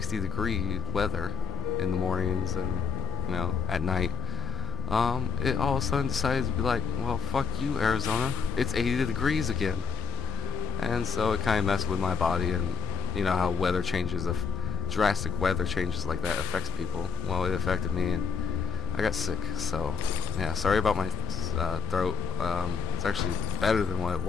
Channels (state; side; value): quieter; right; 6.7 dB